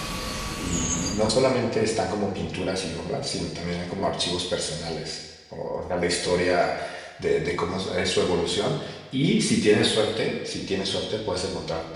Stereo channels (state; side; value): identical; both; correlation 1.00